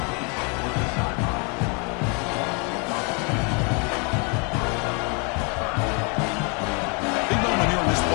Big moment here in this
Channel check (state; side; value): quieter; right; 34.1 dB